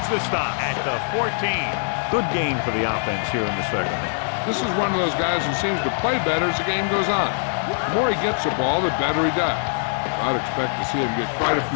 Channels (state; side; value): silent; right; digital silence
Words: the stop at the 14. Good game for the offense here in the 2nd. This is one of those guys who seems to play better as the game goes on. The more he gets the ball, the better he does. I'd expect to see him get quite a